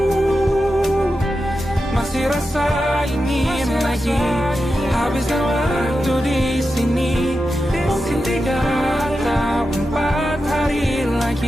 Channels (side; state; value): both; normal; correlation 0.90